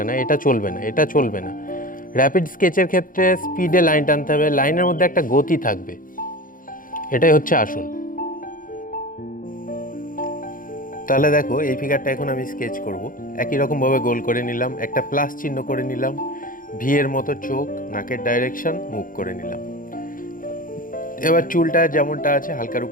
এটা চলবে না, এটা চলবে না। র্যাপিড স্কেচের ক্ষেত্রে স্পিডে লাইন টানতে হবে, লাইনের মধ্যে একটা গতি থাকবে, এটাই হচ্ছে আসল। তাহলে দেখো, এই ফিগারটা এখন আমি স্কেচ করব। একই রকমভাবে গোল করে নিলাম, একটা প্লাস চিহ্ন করে নিলাম, ভিয়ের মতো চোখ, নাকের ডাইরেকশন, মুখ করে নিলাম। এবার চুলটা যেমনটা আছে হালকার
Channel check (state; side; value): late; right; 0.40 ms